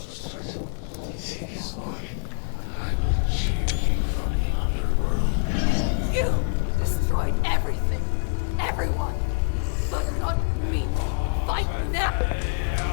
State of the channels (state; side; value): silent; right; 61 dB below the other